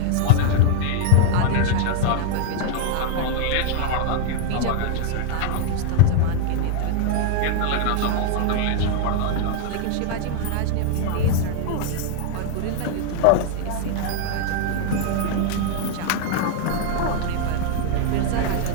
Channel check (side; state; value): both; different; correlation 0.00